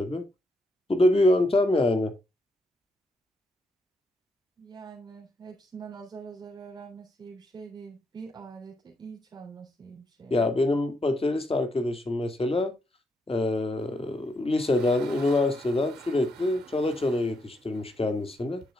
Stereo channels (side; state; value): both; normal; correlation 0.78